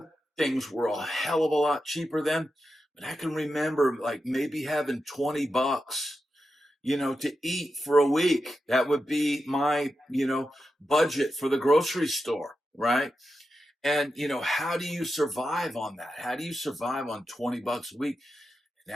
Things were a hell of a lot cheaper then, but I can remember like maybe having 20 bucks to eat for a week. That would be my, budget for the grocery store, right? And, how do you survive on that? How do you survive on 20 bucks a week?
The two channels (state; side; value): normal; both; correlation 0.89